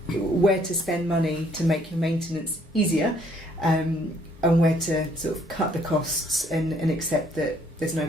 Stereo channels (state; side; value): normal; both; correlation 0.65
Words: where to spend money to make your maintenance easier, and where to sort of cut the costs and accept that there's no